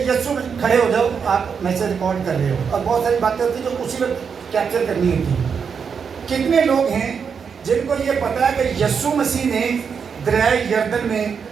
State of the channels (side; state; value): left; quieter; 6.4 dB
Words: یسوع، کھڑے ہو جاؤ، آپ میسج ریکارڈ کر رہے ہو اور بہت ساری باتیں ہوتی ہیں جو اسی وقت کیپچر کرنی ہوتی ہیں. کتنے لوگ ہیں جن کو یہ پتا ہے کہ یسوع مسیح نے دریائے یردن میں